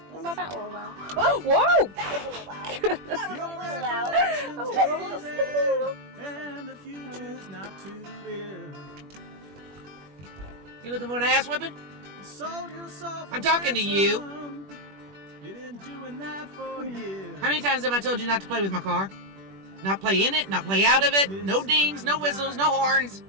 What about that little loud? Oh, whoa! That was a little loud. That was a little loud. Recollection's hazy, and the future's not too clear. You looking for an ass whipping? You sold yourself I'm talking to you. ransom. You've been doing that for years. How many times have I told you not to play with my car? Not play in it, not play out of it. No dings, no whistles, no horns.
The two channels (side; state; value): left; late; 21 ms